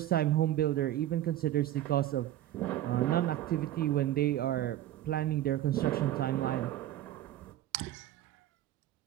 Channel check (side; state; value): left; quieter; 13.1 dB